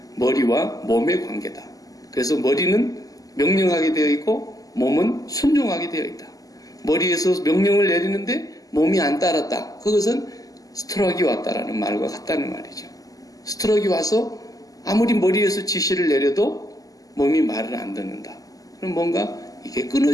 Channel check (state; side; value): late; right; 0.17 ms